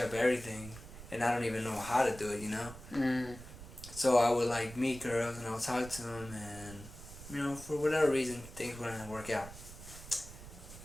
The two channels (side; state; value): right; noise; rumble, 14 dB below the sound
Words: everything, and I don't even know how to do it, you know? So I would like meet girls and I would talk to them, and you know, for whatever reason, things wouldn't work out.